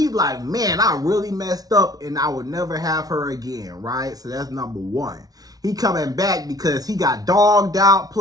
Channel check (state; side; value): late; left; 0.18 ms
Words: like, man, I really messed up and I would never have her again, right? So that's number one. He coming back because he got dogged out,